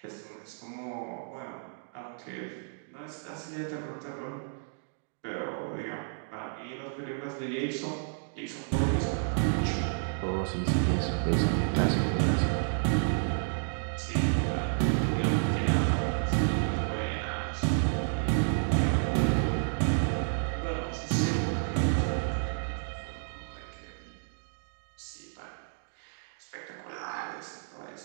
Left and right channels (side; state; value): left; silent; digital silence